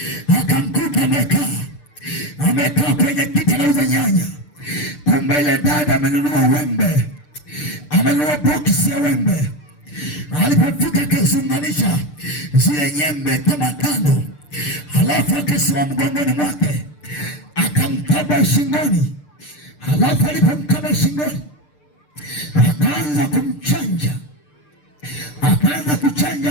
Akamkuta amekaa kwenye kiti anauza nyanya. Kumbe ile dada amenunua wembe, amenunua boksi ya wembe. Alipofika akaziunganisha zile nyembe kama 5, halafu akasimama mgongoni mwake akamkaba shingoni. Halafu alipomkaba shingoni akaanza kumchanja, akaanza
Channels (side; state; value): right; late; 6.7 ms